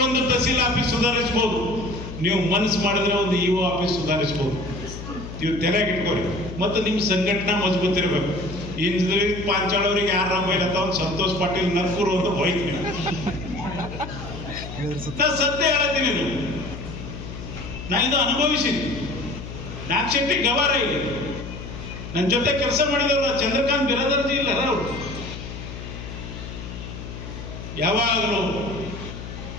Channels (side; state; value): left; noise; hum, 10 dB below the sound